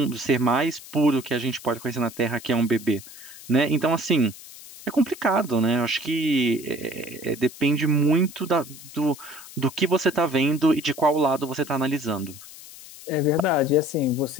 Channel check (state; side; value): noise; left; hiss, 17 dB below the sound